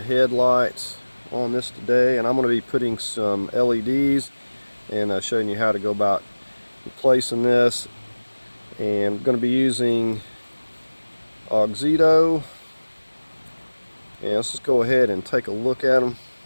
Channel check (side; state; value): both; inverted; correlation -1.00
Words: on this today, and I'm going to be putting some LEDs and showing you how to go about replacing this. And I'm going to be using Auxito. And let's just go ahead and take a look at them.